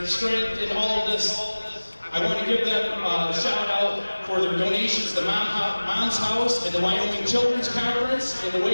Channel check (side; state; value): both; inverted; correlation -1.00